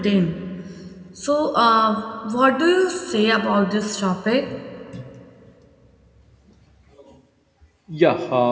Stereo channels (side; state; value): both; identical; correlation 1.00